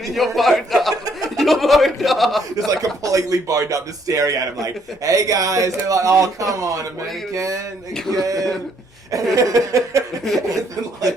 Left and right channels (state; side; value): normal; both; correlation 0.68